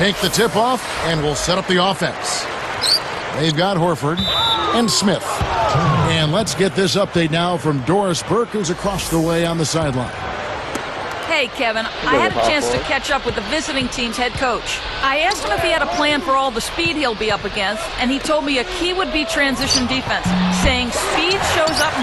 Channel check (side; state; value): both; identical; correlation 1.00